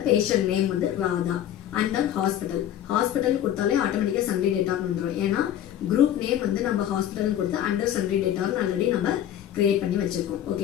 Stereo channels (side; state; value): right; quieter; 11.1 dB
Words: பேஷண்ட் நேம் வந்து ராதா. அண்டர் ஹாஸ்பிட்டல் ஹாஸ்பிட்டல் கொடுத்தாலே ஆட்டோமேட்டிக்கா சண்டே டேட்டான்னு வந்துடும். ஏன்னா குரூப் நேம் வந்து நம்ம ஹாஸ்பிட்டல் கொடுத்து அண்டர் சண்டே டேட்டான்னு ஆல்ரெடி நம்ம கிரியேட் பண்ணி வச்சிருக்கோம்.